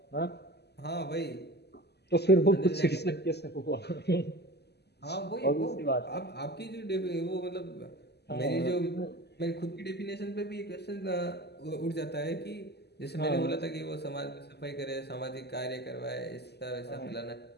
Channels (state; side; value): late; right; 0.49 ms